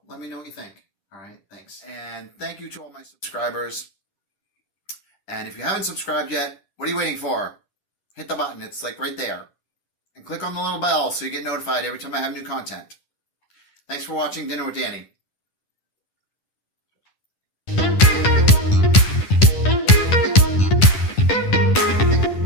Let me know what you think. All right, thanks. And thank you to all my subscribers. And if you haven't subscribed yet, what are you waiting for? Hit the button. It's like right there. And click on the little bell so you get notified every time I have new content. Thanks for watching Dinner with Danny.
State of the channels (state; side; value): late; right; 10 ms